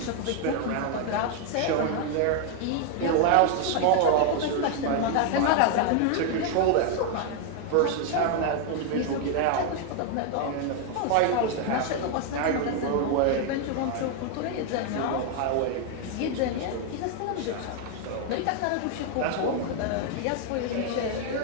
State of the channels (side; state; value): both; different; correlation 0.00